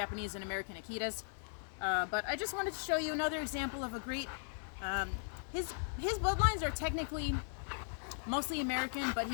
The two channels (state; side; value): silent; right; digital silence